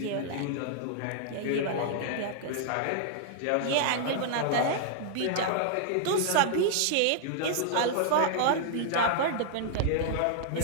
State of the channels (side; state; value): both; different; correlation -0.01